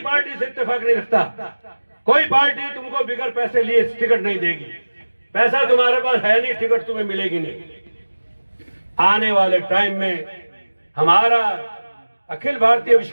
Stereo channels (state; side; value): inverted; both; correlation -1.00